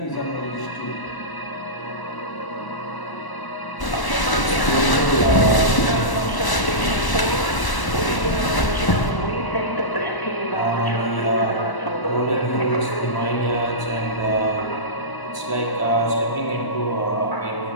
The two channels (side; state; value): right; late; 1.0 ms